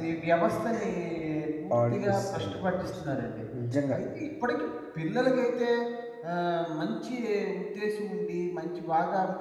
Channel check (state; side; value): identical; both; correlation 1.00